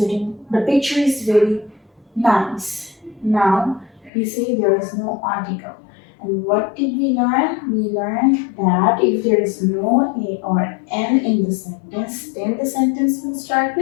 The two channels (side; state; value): right; drops out; at 4.1 s